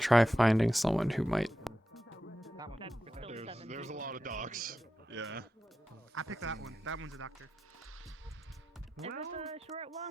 finding someone who might. There's a lot of docs. Yeah. I picked that one. That one's a doctor. Is it the short one?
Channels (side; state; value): both; normal; correlation 0.90